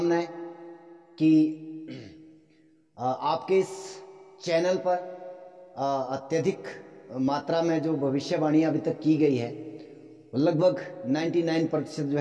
कि आपके इस चैनल पर अत्यधिक मात्रा में जो भविष्यवाणी अभी तक की गई है लगभग 99% जो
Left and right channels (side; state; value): both; identical; correlation 1.00